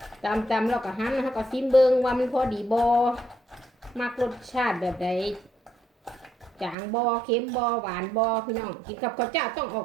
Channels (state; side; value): drops out; left; at 6.8 s